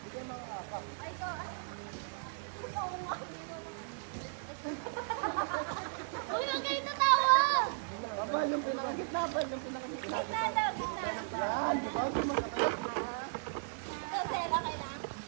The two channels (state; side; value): silent; left; digital silence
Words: Uy, ang galing na tawa! Abal, yung pinakagitna. Yan, di ba? Hindi masakit. Kasi, bakit lang?